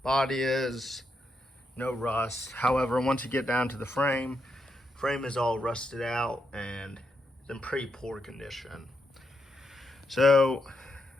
Body is, no rust. However, once you get down to the frame is all rusted out and it's in pretty poor condition. So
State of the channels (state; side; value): normal; both; correlation 0.82